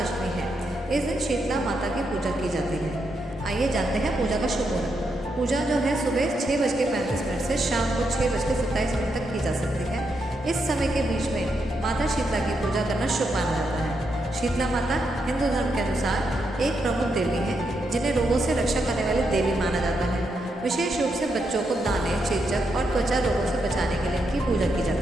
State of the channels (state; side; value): normal; both; correlation 0.81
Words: अष्टमी है। इस दिन शीतला माता की पूजा की जाती है। आइए जानते हैं पूजा का शुभ मुहूर्त। पूजा जो है सुबह 6:35 से शाम को 6:27 तक की जा सकती है। इस समय के बीच में माता शीतला की पूजा करना शुभ माना जाता है। शीतला माता हिंदू धर्म के अनुसार एक प्रमुख देवी है, जिन्हें रोगों से रक्षा करने वाली देवी माना जाता है। विशेष रूप से बच्चों को दाने, चेचक और त्वचा रोगों से बचाने के लिए इनकी पूजा की